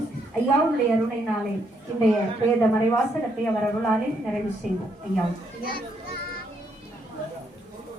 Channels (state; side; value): normal; both; correlation 0.74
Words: ஐயாவுடைய அருணையினாலே இன்றைய வேத மறைவாசகத்தை அவர் அருளாலே நிறைவு செய்வோம். ஐயா